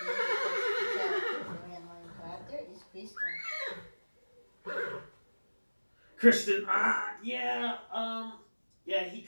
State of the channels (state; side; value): inverted; both; correlation -1.00